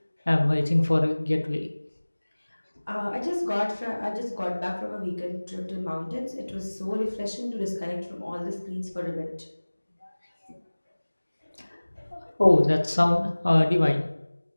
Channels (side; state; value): both; inverted; correlation -1.00